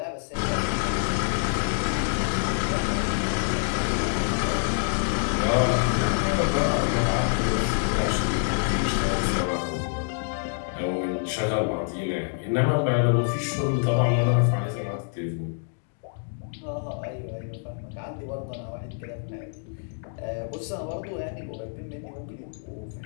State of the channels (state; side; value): silent; right; 61 dB below the other